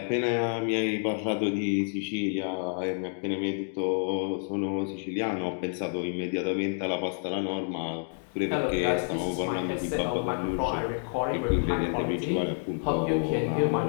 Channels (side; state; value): right; silent; 58 dB below the other